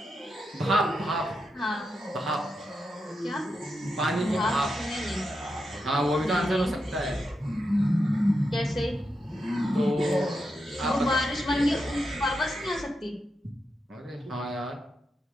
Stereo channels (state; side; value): normal; both; correlation 0.86